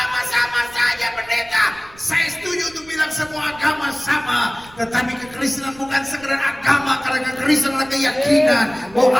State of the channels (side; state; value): right; noise; rumble, 24 dB below the sound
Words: sama saja pendeta. Saya setuju untuk bilang semua agama sama, tetapi kekristenan bukan sekedar agama, karena kekristenan adalah keyakinan